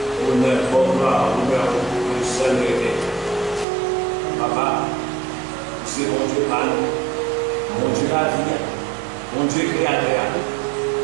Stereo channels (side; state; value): left; drops out; at 3.7 s